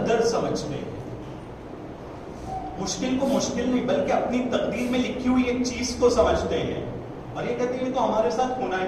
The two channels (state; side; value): identical; both; correlation 1.00